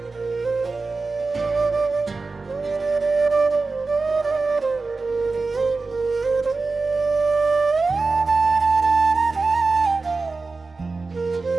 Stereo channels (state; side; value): quieter; left; 3.9 dB